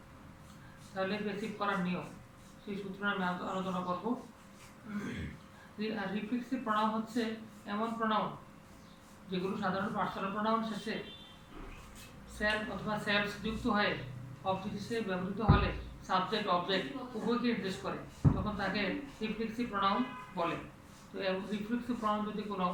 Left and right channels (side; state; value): both; identical; correlation 1.00